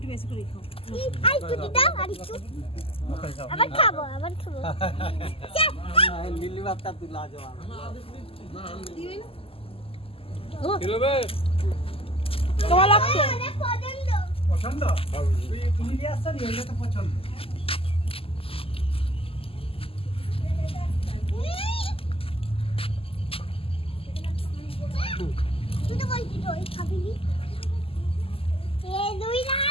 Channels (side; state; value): right; late; 0.27 ms